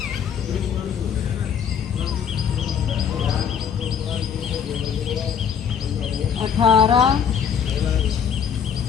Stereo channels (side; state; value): right; quieter; 7.5 dB